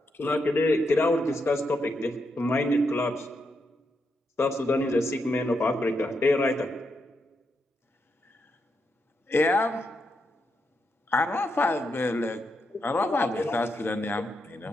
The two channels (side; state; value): both; normal; correlation 0.82